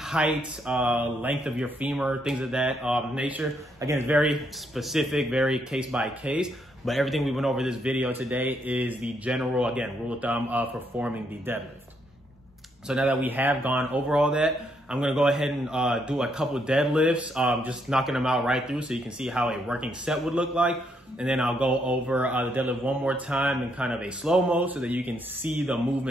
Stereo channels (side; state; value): both; normal; correlation 0.75